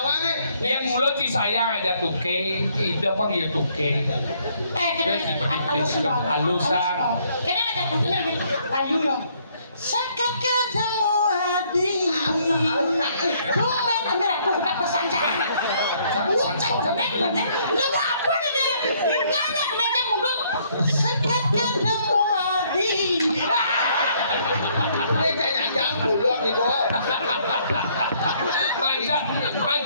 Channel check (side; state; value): both; inverted; correlation -0.66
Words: nih. Yang mulut si sayang aja tuke, tidak panggil tuke. Halusan. Kena ada punya gitu. Ayu ya. Sekat ketemu Adi. Kumen ambil aku udah pesan jangan. Lu apa nih? Nggak ada meja mundur. Sekat ketemu Adi. Ini jangan mulut nih, Bo. Mancan